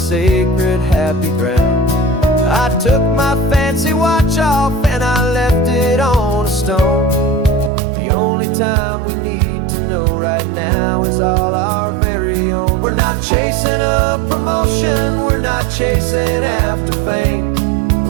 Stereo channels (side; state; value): left; drops out; at 7.7 s